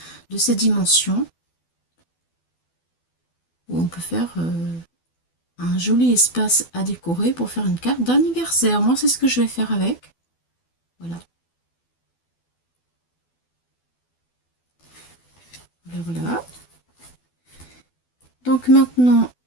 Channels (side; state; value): right; late; 12 ms